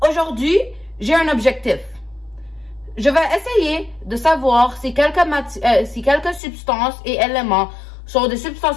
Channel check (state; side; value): drops out; right; at 6.4 s